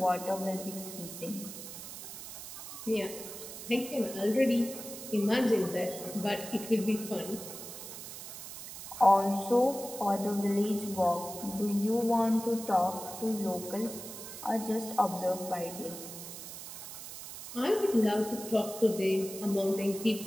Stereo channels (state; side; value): noise; right; hiss, 11 dB below the sound